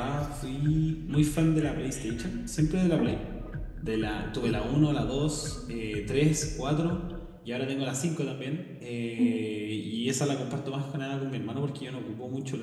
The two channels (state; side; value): identical; both; correlation 1.00